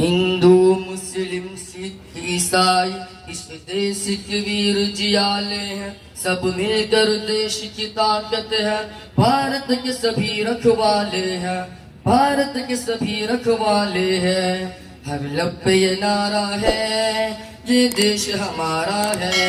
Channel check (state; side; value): identical; both; correlation 1.00